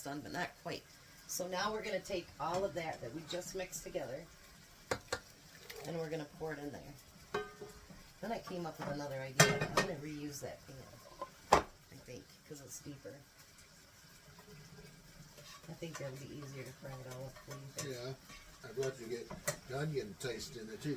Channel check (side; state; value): both; identical; correlation 1.00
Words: done, but not quite. So now we're going to take all of that we just mixed together, and we're going to pour it in there. Then I came up with another idea. I'm going to reuse that pan, I think, because it's deeper. I think that'll be easier to fry it all up. What do you think? Yeah. I'd love to get the onion taste in it